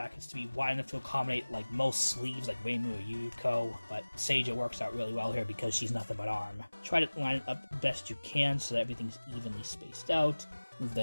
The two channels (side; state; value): both; inverted; correlation -1.00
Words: to be wide enough to accommodate like most sleeves like Reimu or Yuko, but Seija works out really well here because she's nothing but arm. Try to line it up best you can so that everything's evenly spaced out. Move the